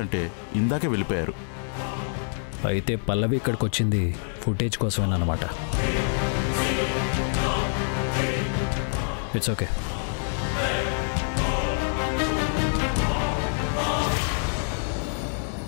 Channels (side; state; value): right; silent; digital silence